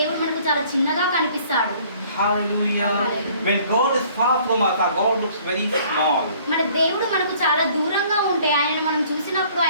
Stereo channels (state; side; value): inverted; both; correlation -0.56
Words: మనకు చాలా చిన్నగా కనిపిస్తాడు. Hallelujah. Hallelujah. When God is far from us, our God looks very small. మన దేవుడు మనకు చాలా దూరంగా ఉంటే ఆయన మనం చూసినప్పుడు